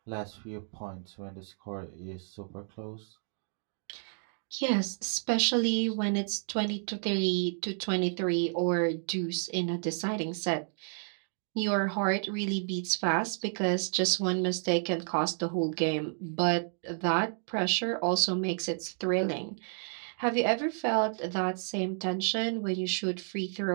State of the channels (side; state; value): left; silent; 57 dB below the other